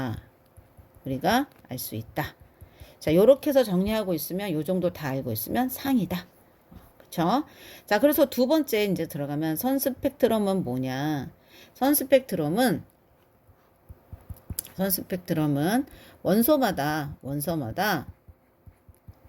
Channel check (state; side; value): identical; both; correlation 1.00